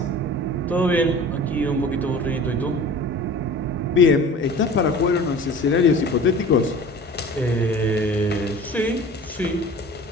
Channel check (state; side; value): normal; both; correlation 0.41